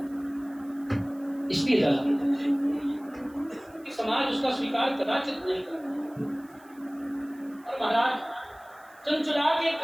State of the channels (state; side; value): noise; right; hiss, 28 dB below the sound